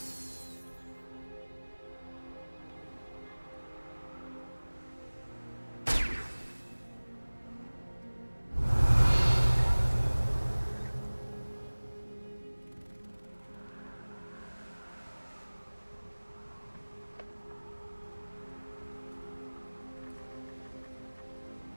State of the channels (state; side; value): inverted; both; correlation -1.00